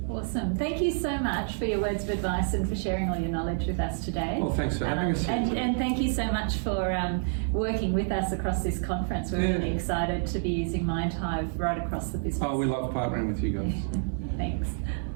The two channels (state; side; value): silent; left; 56 dB below the other